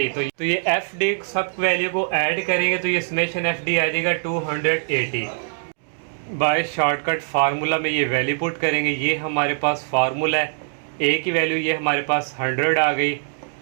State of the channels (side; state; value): left; silent; digital silence